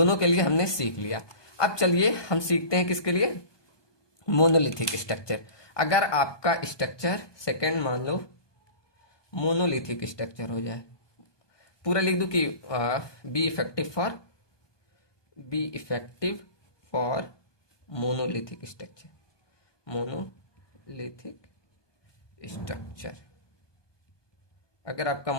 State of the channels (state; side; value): late; right; 1.2 ms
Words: के लिए हमने सीख लिया। अब चलिए हम सीखते हैं किसके लिए, मोनोलिथिक स्ट्रक्चर। अगर आपका स्ट्रक्चर सेकंड मान लो मोनोलिथिक स्ट्रक्चर हो जाए, पूरा लिख दूं कि be effective for monolithic structure, अगर आपका